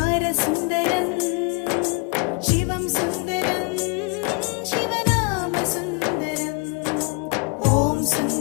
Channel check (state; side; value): quieter; right; 32.6 dB